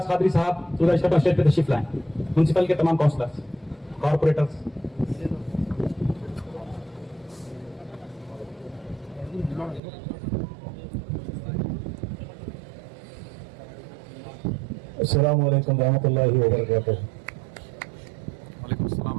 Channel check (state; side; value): drops out; left; at 9.8 s